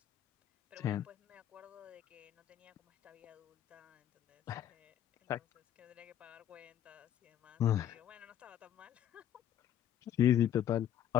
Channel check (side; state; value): right; quieter; 10.6 dB